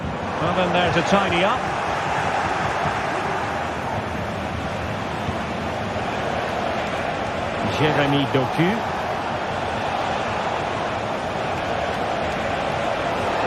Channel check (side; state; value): both; identical; correlation 1.00